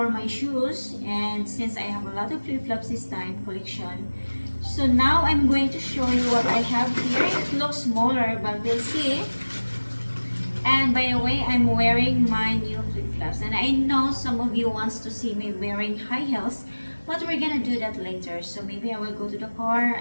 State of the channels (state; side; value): inverted; both; correlation -1.00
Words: my shoes, and since I have a lot of flip-flops this time collection. So now I'm going to show you what I have here. It looks smaller, but we'll see. And by the way, I'm wearing my new flip-flops. And I know some of you wants to see me wearing high heels, but we're gonna do that later. So maybe I will go to the car